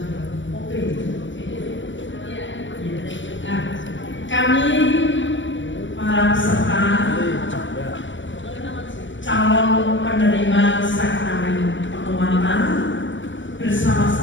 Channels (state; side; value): late; right; 0.55 ms